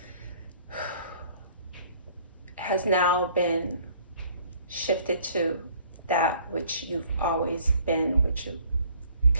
has now been shifted to that which you've always been, which you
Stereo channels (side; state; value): both; inverted; correlation -0.56